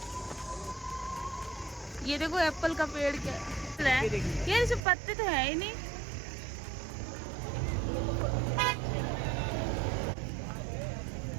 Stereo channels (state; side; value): drops out; left; at 4.8 s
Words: ये देखो एप्पल का पेड़ क्या है यार, इसमें पत्ते तो है ही नहीं।